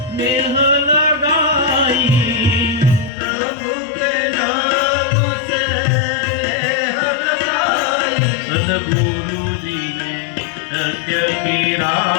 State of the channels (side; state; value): right; drops out; at 3.1 s